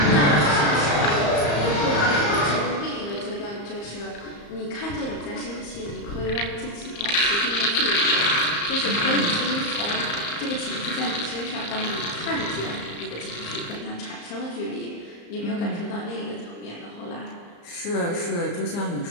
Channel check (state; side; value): late; right; 34 ms